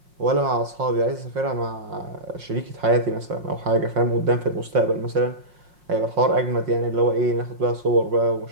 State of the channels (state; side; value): late; left; 5.6 ms